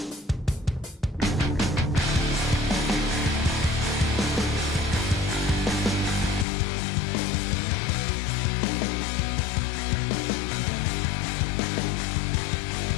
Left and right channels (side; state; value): right; drops out; at 6.5 s